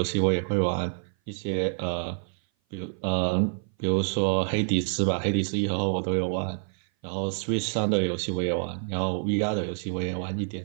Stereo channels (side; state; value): left; silent; 57 dB below the other